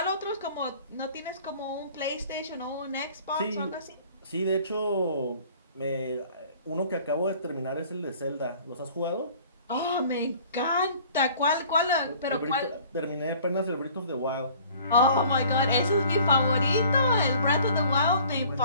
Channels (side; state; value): both; inverted; correlation -0.51